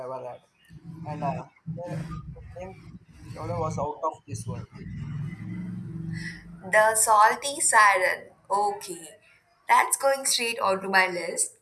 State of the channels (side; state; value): both; identical; correlation 1.00